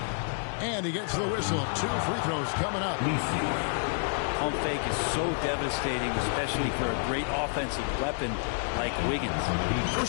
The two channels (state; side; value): silent; right; digital silence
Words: And he gets the whistle. 2 free throws coming up. Pump fake is so devastating, especially for a great offensive weapon like Wiggins.